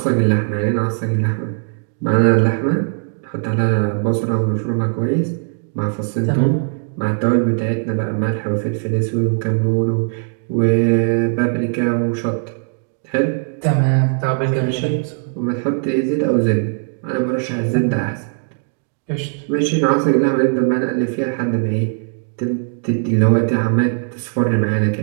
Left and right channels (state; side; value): silent; left; 65 dB below the other